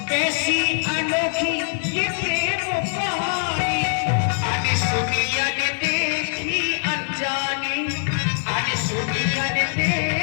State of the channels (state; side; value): silent; right; digital silence